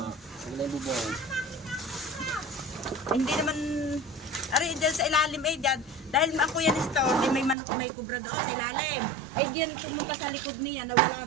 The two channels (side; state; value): left; drops out; at 7.6 s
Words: Hindi naman, ari dyan sa ilalim eh, dyan. Dahil ako yan store, di may manok may kubra doon sa ilalim. Ay diyan pumunta sa likod niya,